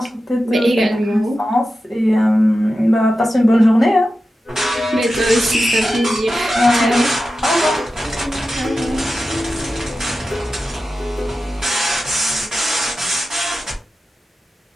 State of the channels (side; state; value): both; normal; correlation 0.92